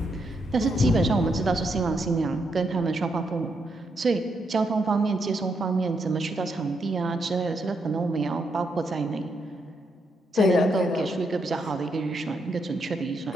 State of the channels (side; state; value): both; normal; correlation 0.79